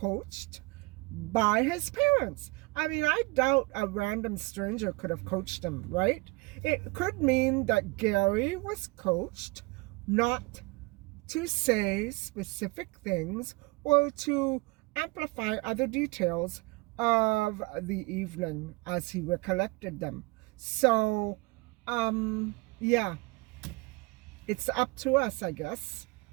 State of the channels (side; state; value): left; quieter; 25.7 dB